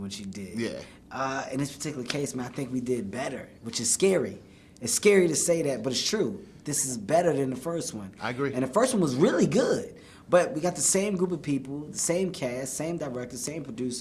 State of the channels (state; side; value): identical; both; correlation 1.00